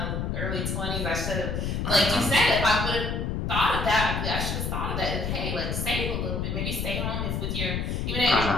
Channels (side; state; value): left; noise; rumble, 1 dB below the sound